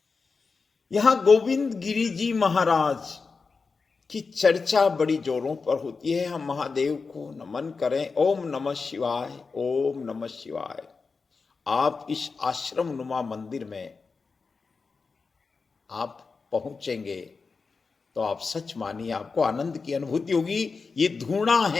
यहां गोविंद गिरि जी महाराज की चर्चा बड़ी जोरों पर होती है। हम महादेव को नमन करें। ओम नमः शिवाय, ओम नमः शिवाय। आप इस आश्रम नुमा मंदिर में आप पहुंचेंगे तो आप सच मानिए आपको आनंद की अनुभूति होगी। ये धूणा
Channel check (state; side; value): quieter; right; 4.6 dB